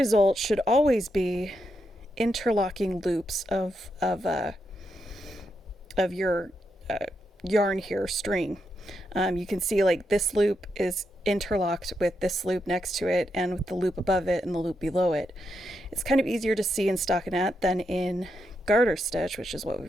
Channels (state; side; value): normal; both; correlation 0.83